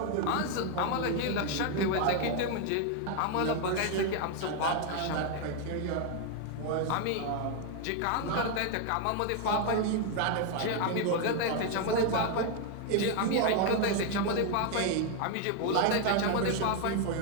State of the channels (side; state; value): both; different; correlation 0.01